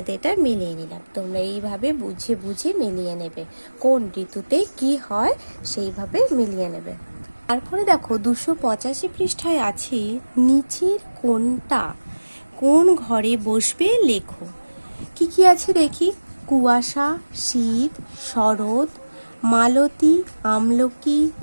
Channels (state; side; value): inverted; both; correlation -1.00